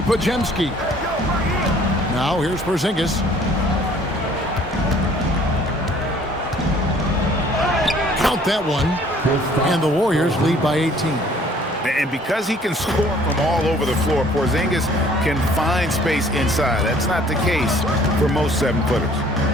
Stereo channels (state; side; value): normal; both; correlation 0.56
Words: Podziemski. Now here's Porzingis. Count that one. And the Warriors lead by 18. And because he can score from all over the floor, Porzingis can find space inside. That's not the case for most 7-footers.